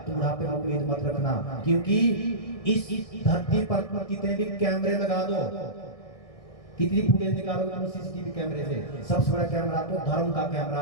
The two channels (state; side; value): late; right; 1.6 ms